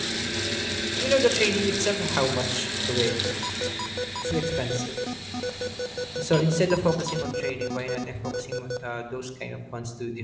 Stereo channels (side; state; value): both; identical; correlation 1.00